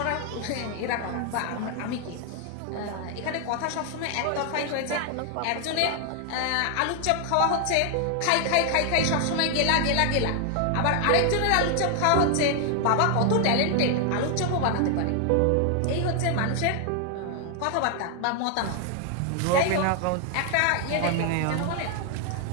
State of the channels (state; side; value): different; both; correlation 0.00